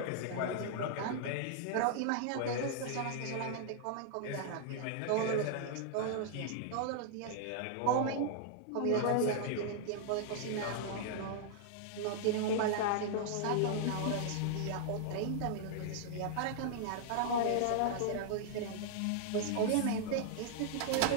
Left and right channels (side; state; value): both; different; correlation -0.01